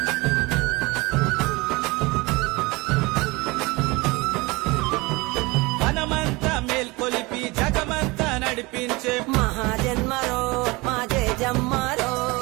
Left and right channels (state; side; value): quieter; left; 23.8 dB